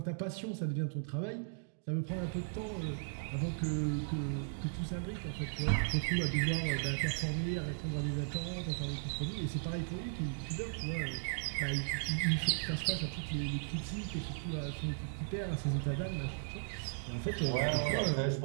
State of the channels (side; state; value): left; silent; digital silence